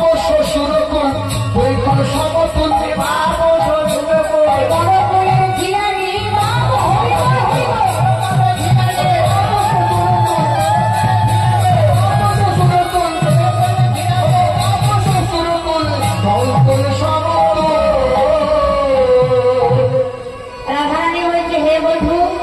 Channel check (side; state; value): both; identical; correlation 1.00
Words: শ্বশুর কুল দুই কুল সমতুল বাপ শ্বশুর কুল বড় কুলের ঝিয়ারি বাপ হইব রাধারানী বলছে হে বন্ধু